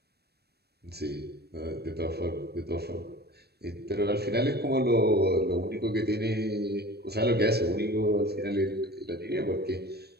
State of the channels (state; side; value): late; left; 0.47 ms